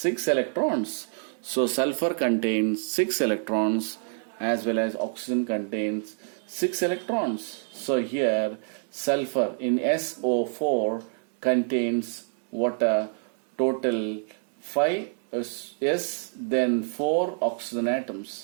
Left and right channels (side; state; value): left; silent; digital silence